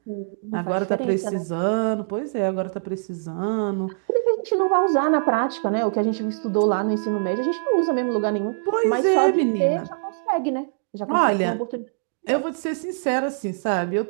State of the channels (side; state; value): left; silent; digital silence